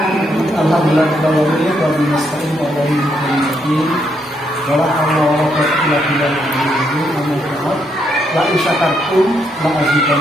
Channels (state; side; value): normal; both; correlation 0.76